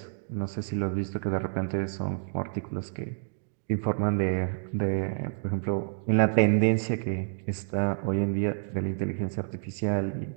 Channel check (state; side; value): silent; left; digital silence